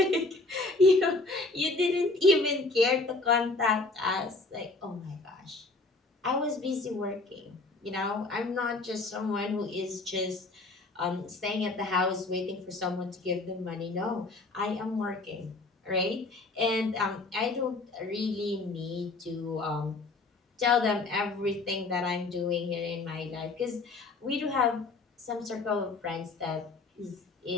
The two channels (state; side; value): quieter; right; 3.3 dB